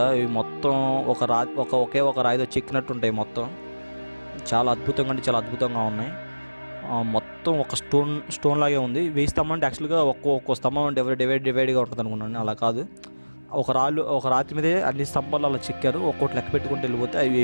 ఇవి మొత్తం ఒకే ఒక రాయితో చెక్కినట్టు ఉంటాయి. మొత్తం చాలా అద్భుతంగా అంటే చాలా అద్భుతంగా ఉన్నాయి. మొత్తం ఒక స్టోన్ లాగే ఉంది. వేయి స్తంభం అంటే యాక్చువల్గా ఒక్కో స్తంభం డివైడ్గా ఉంటుంది అనుకున్నాను. అలా కాదు, ఒక రాతి మీదే అన్ని స్తంభాలు అలా చెక్కారు. ఒక్కోటి లెక్క పెట్టుకుంటూ వెళ్ళిపోతే అవి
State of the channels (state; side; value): inverted; both; correlation -1.00